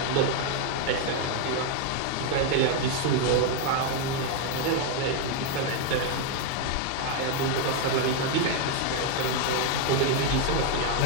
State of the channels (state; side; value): different; both; correlation 0.01